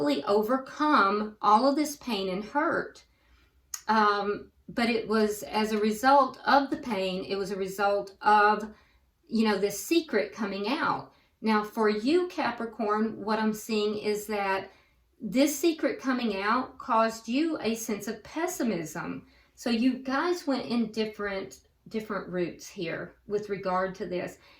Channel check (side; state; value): both; identical; correlation 1.00